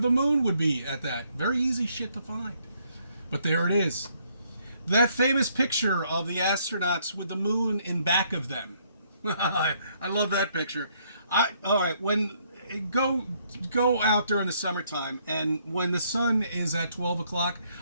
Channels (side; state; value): both; inverted; correlation -0.69